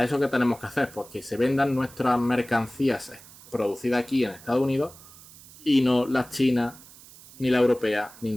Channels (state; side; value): noise; right; hiss, 21 dB below the sound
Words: eso qué tenemos que hacer? Pues que se vendan nuestras mercancías producidas aquí en Estados Unidos y no las chinas, ni la europea, ni